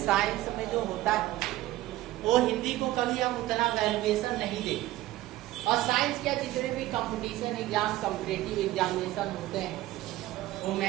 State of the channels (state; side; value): quieter; left; 16.0 dB